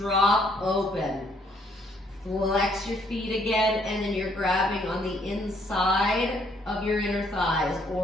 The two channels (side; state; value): both; normal; correlation 0.67